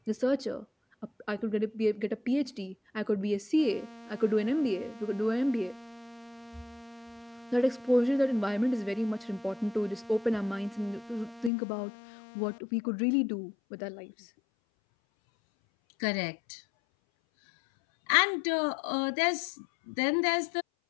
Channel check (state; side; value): drops out; right; at 11.5 s